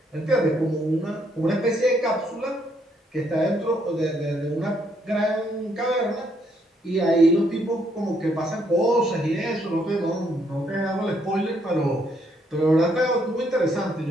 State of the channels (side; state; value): both; normal; correlation 0.72